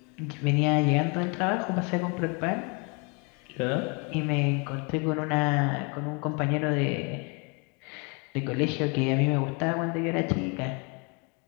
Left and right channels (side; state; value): right; quieter; 33.1 dB